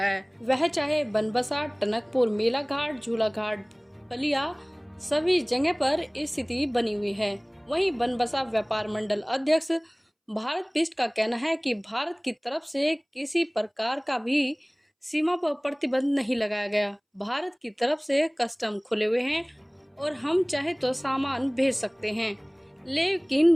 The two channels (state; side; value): identical; both; correlation 1.00